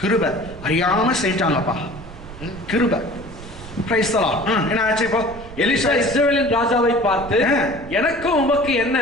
அறியாம செய்யிட்டாங்கப்பா, கிருபை. என்ன ஆச்சு இப்போ? எலிசா இஸ்ரவேலின் ராஜாவை பார்த்து, எனக்கு உமக்கு என்ன?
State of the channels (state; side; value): noise; right; rumble, 15 dB below the sound